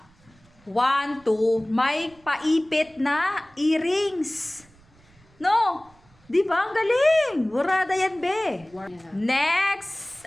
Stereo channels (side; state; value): right; noise; rumble, 29 dB below the sound